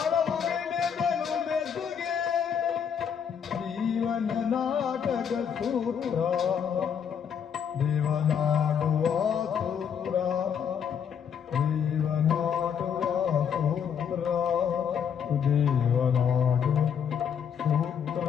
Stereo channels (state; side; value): quieter; right; 7.7 dB